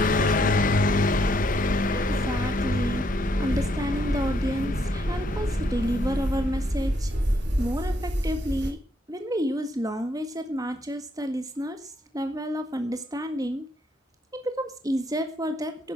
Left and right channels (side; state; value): both; normal; correlation 0.73